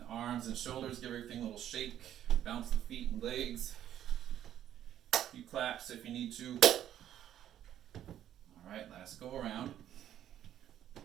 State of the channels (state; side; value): quieter; left; 11.1 dB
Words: arms and shoulders, give everything a little shake. Bounce the feet and legs. A few claps if you need to. Alright, last go around.